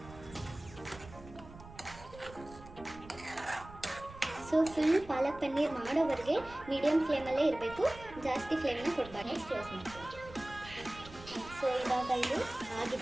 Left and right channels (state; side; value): noise; right; rumble, 17 dB below the sound